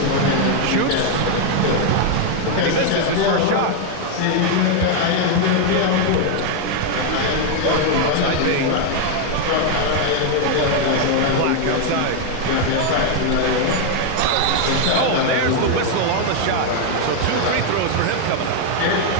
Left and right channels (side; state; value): both; different; correlation 0.00